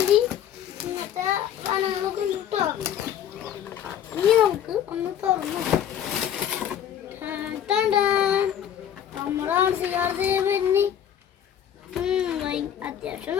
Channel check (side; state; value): right; quieter; 9.8 dB